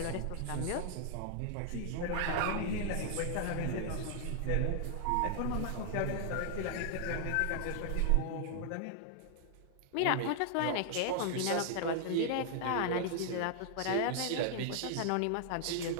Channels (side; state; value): both; different; correlation 0.00